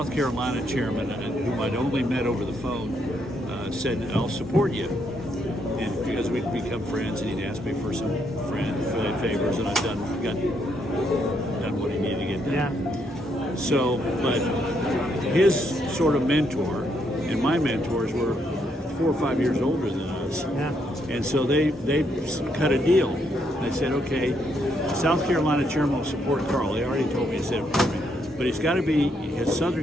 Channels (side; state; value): both; normal; correlation 0.75